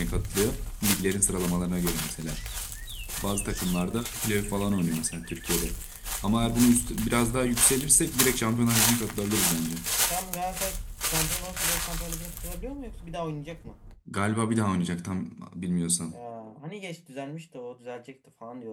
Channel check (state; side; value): identical; both; correlation 1.00